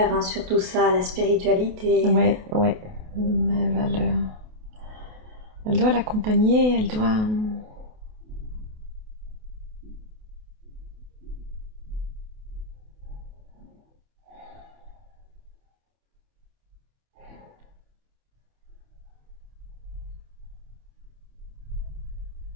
sur tout ça, la spiritualité. Ouais. Elle doit l'accompagner, elle doit...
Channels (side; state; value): left; late; 28 ms